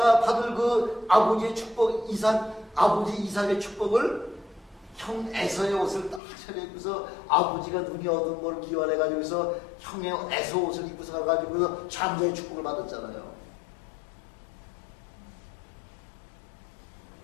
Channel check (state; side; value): drops out; right; at 6.2 s